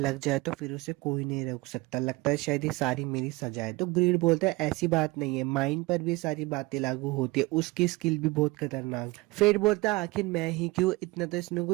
जाए तो फिर उसे कोई नहीं रोक सकता। लगता है शायद ये सारी मेरी सजा है। तो ग्रीड बोलता है ऐसी बात नहीं है, माइंड पर भी सारी बातें लागू होती है, उसकी स्किल भी बहुत खतरनाक है। फेट बोलता है आखिर मैं ही क्यों, इतना तो इसमें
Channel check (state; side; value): quieter; left; 22.5 dB